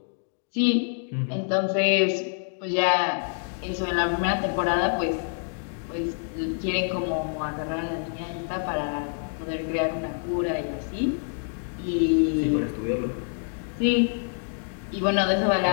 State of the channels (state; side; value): silent; right; 60 dB below the other